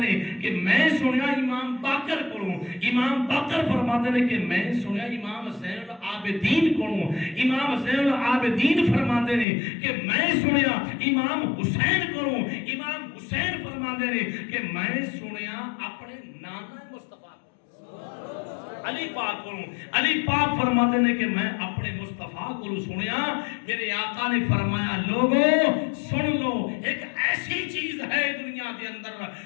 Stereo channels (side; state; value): right; drops out; at 9.5 s